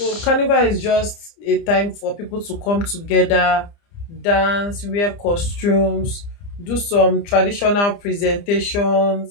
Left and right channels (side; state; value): right; late; 30 ms